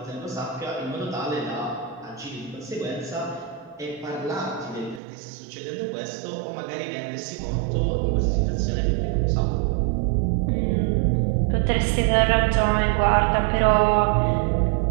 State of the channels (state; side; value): drops out; left; at 5.0 s